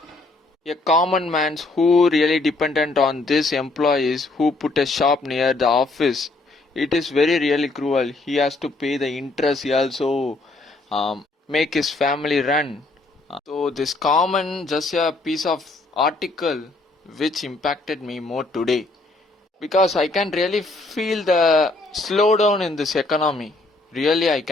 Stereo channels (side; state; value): right; quieter; 3.2 dB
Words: a common man's who really dependent on these employees who put a shop near the office, it is very really cruel. He has to pay the interest. He also make his family run. So this common just a piece of article which impacted me more today because I can really feel the slowdown in this economy. Really, I